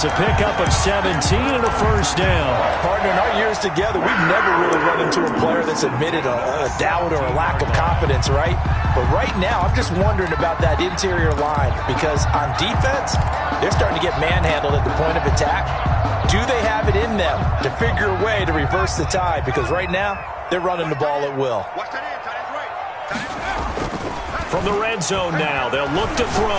a pickup of 17 and a first down. Partner, in our years together, we've never really run into a player that's admitted a doubt or a lack of confidence, right? But right now, I'm just wondering about that interior line because on defense, they're starting to get manhandled at the point of attack. Do they have it in them to figure a way to reverse the tide? Because right now, they're running the ball at will. From the red zone now, they'll look to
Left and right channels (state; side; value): identical; both; correlation 1.00